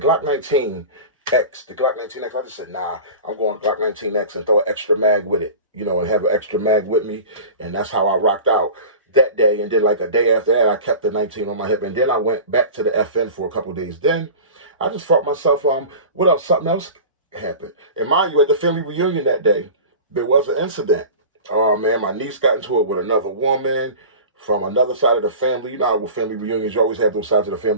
19 X, the Glock 19X, I just said, nah, I'm going Glock 19X and throw an extra mag with it, you know, and have an extra mag with me. And that's how I rocked out that day. And then like a day after that, I kept the 19 on my hip. And then I went back to the FN for a couple of days. Then I just felt myself, what else? Something else happened. And mind you, at the family reunion that day, there was an incident. Oh man, my niece got into it with another woman from another side of the family. You know how with family reunions, you always have those sides of the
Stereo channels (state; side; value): inverted; both; correlation -0.36